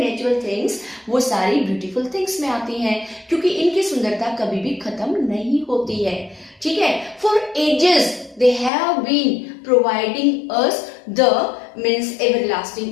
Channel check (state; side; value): drops out; right; at 8.7 s